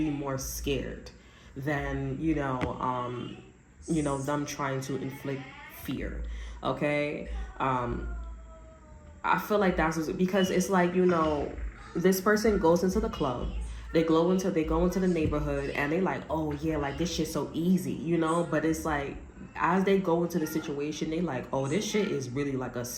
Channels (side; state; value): both; identical; correlation 1.00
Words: more scared than them trying to inflict fear. Okay, I feel like that's because it's like, this person goes into the club, they go into the neighborhood, and they like, oh yeah, like this shit's so easy, but it's like as they go into the situation, they like, oh, this shit is really like a